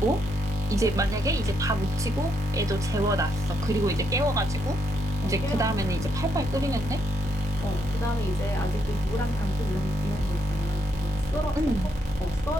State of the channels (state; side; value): normal; both; correlation 0.77